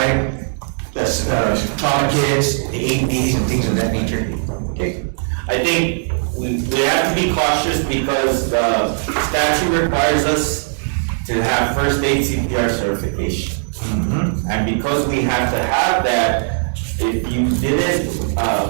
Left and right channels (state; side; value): silent; left; 67 dB below the other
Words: the trauma kits, the AEDs and things of that nature. Okay. I think we have to be cautious because the statute requires us to have first aid CPR certification. And because we have to have that, if you didn't,